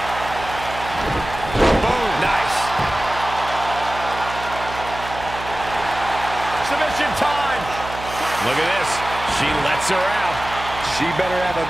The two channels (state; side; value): noise; right; hum, 11 dB below the sound